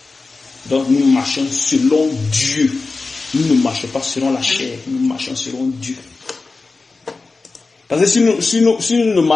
Donc nous marchons selon Dieu. Nous ne marchons pas selon la chair, nous marchons selon Dieu. Parce que si nous ne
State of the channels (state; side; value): quieter; right; 3.9 dB